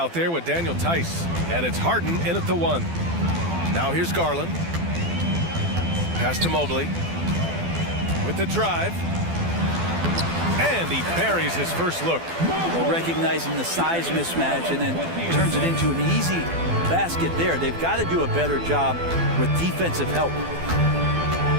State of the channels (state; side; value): late; left; 12 ms